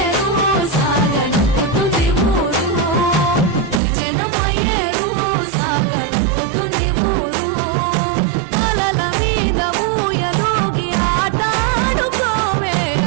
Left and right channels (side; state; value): left; drops out; at 3.8 s